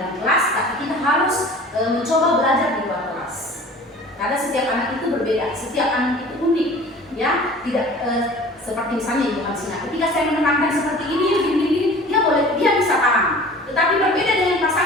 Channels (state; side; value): normal; both; correlation 0.44